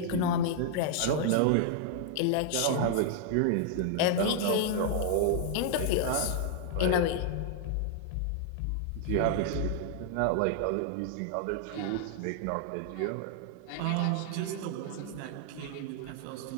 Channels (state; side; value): different; both; correlation -0.01